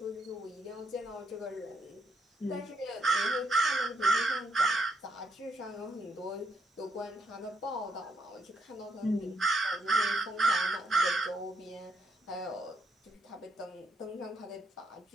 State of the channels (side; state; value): both; normal; correlation 0.76